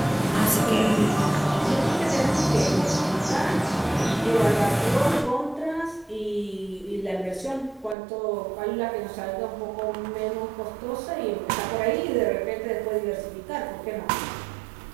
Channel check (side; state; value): left; drops out; at 8.0 s